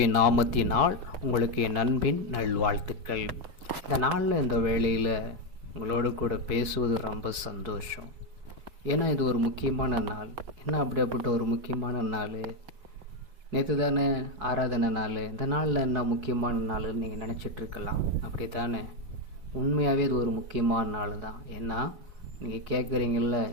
நாமத்தினால் உங்களுக்கு என் அன்பின் நல்வாழ்த்துக்கள். இந்த நாளில் இந்த வேளையில் உங்களோடு கூட பேசுவது ரொம்ப சந்தோஷம். ஏன்னா இது ஒரு முக்கியமான நாள். என்ன அப்படிப்பட்ட ஒரு முக்கியமான நாள்? நேற்று தானே ஆராதனை நாள். இந்த நாளில் என்ன முக்கியமான நாள்னு நீங்கள் நினச்சிட்ருக்கலாம். அப்படி தானே? உண்மையாகவே இது ஒரு முக்கியமான நாள் தான். ஏன்னா நீங்கள் கேட்குறீங்கள,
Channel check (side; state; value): left; late; 4.7 ms